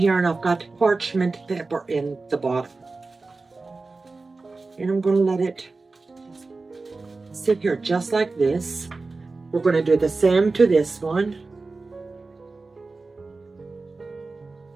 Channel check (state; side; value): quieter; left; 3.7 dB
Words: and I've got parchment paper in the bottom. And I'm going to let it sit here just like this. We're going to do the same to this one.